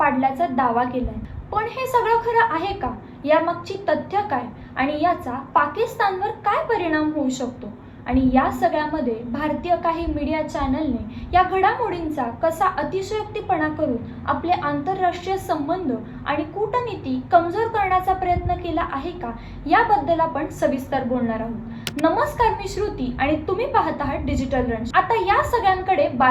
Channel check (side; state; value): both; identical; correlation 1.00